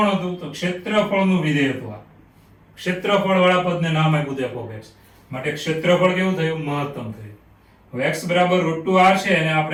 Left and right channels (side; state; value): both; identical; correlation 1.00